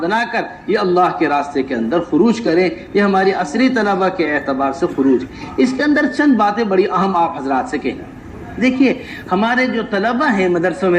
بنا کر یہ اللہ کے راستے کے اندر خروج کریں۔ یہ ہماری عصری طلبہ کے اعتبار سے خروج۔ اس کے اندر چند باتیں بڑی اہم آپ حضرات سے کہنا۔ دیکھیے ہمارے جو طلبہ ہیں مدرسوں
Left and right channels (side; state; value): both; identical; correlation 1.00